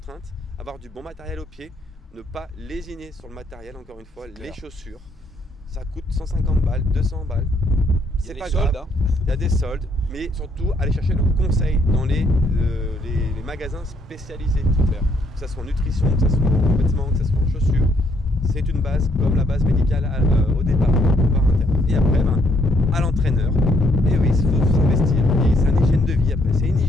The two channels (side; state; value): both; normal; correlation 0.70